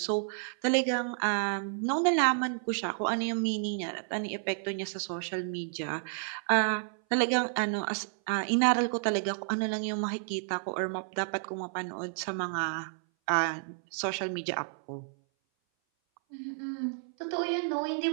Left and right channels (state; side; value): silent; left; 57 dB below the other